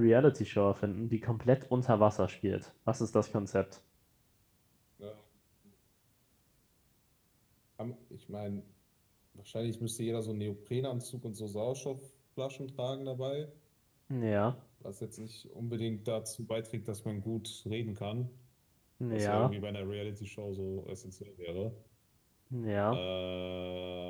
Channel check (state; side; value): identical; both; correlation 1.00